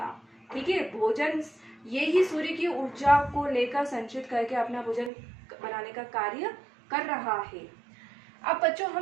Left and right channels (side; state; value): left; drops out; at 5.1 s